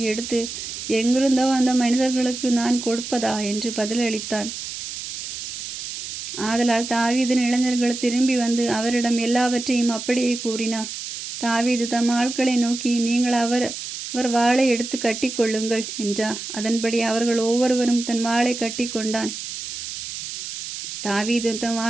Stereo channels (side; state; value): right; noise; hiss, 8 dB below the sound